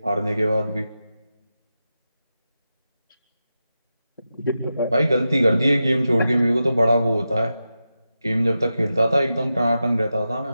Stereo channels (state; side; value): inverted; both; correlation -0.90